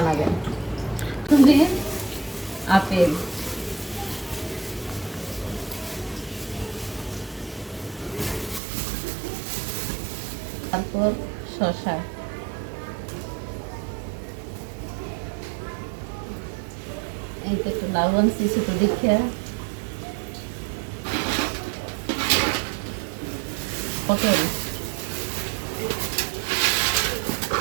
তুমি আপেল, তারপর শসা, এই তো একটু লাউ আনছি ছোটো দেখে, পটল,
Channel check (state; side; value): drops out; left; at 8.6 s